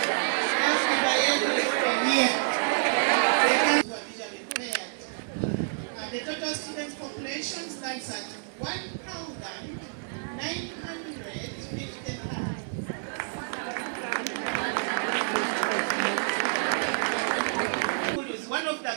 Here. The total student population stands at 1,955. One of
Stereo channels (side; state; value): left; silent; digital silence